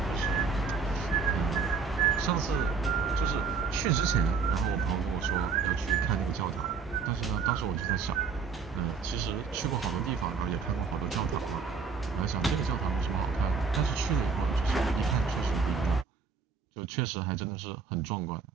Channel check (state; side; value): quieter; left; 5.3 dB